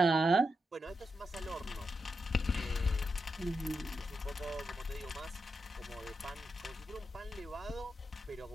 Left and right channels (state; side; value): normal; both; correlation 0.86